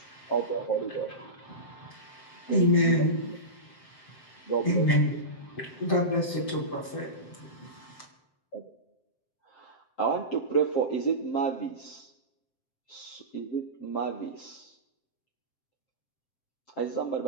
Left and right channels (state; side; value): late; right; 7.6 ms